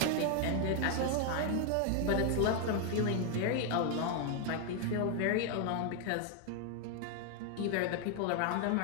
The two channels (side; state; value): both; different; correlation 0.00